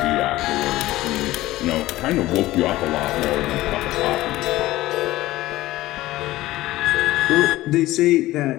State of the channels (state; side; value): quieter; right; 16.9 dB